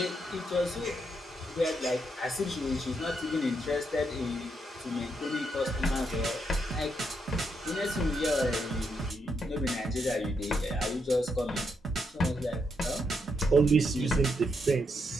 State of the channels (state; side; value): normal; both; correlation 0.79